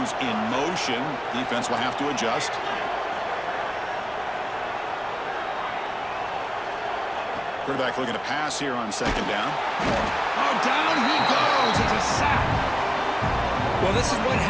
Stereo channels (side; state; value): both; identical; correlation 1.00